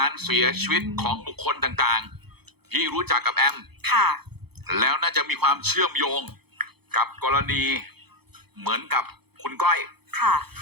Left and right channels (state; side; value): late; left; 0.97 ms